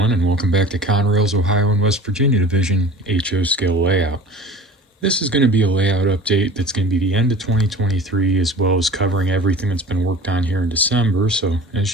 and welcome back to Conrail's Ohio and West Virginia Division HO scale layout. This is going to be a layout update that's going to be the end of 2023 as well as covering everything that's been worked on here in December. So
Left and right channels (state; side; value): normal; both; correlation 0.40